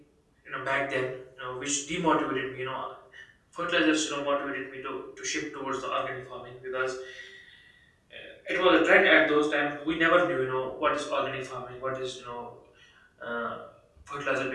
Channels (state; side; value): identical; both; correlation 1.00